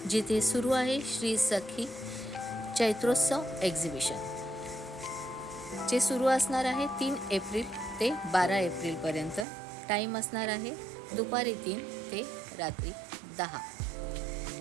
जिथे सुरू आहे श्री सखी चैत्रोत्सव एक्झिबिशन, जे सुरू असणार आहे 3 एप्रिल ते 12 एप्रिलपर्यंत. टाईम असणार आहे दुपारी 3 ते रात्री 10.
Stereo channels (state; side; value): drops out; left; at 9.5 s